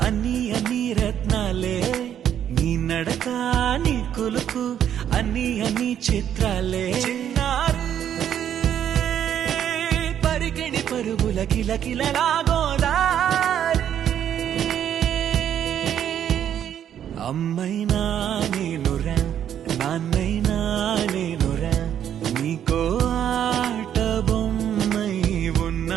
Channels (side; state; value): left; quieter; 9.8 dB